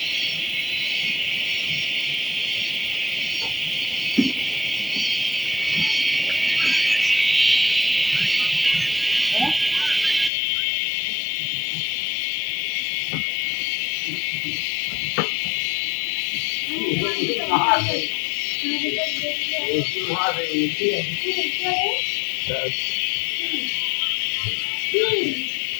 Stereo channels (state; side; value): drops out; right; at 10.3 s